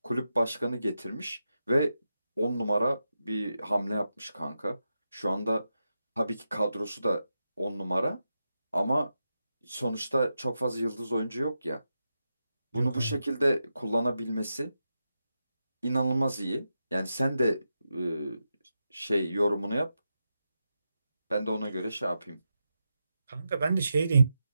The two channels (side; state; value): both; inverted; correlation -0.89